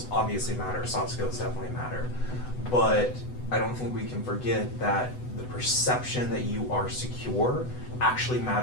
obviously matter, soft skills definitely matter, but I don't think we can forget that the perception that you are secure actually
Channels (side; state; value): right; late; 8.0 ms